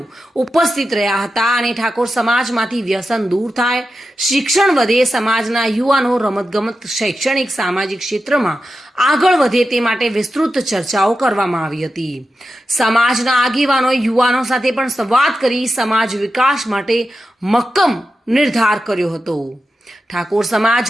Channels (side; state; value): both; normal; correlation 0.90